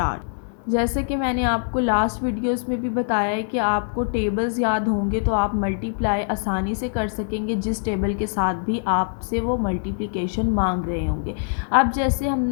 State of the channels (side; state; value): right; silent; 63 dB below the other